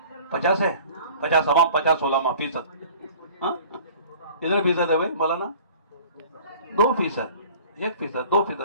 50 ہے. 50 عوام 50 علماء فیصد. کتنے فیصد ہے بھائی مولانا؟ 2%, 1%,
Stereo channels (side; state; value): both; inverted; correlation -0.47